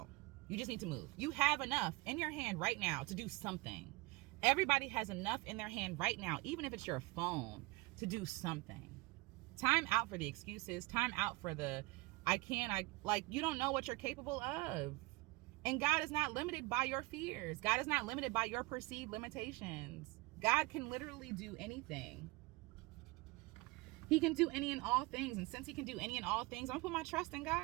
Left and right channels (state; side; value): quieter; left; 22.4 dB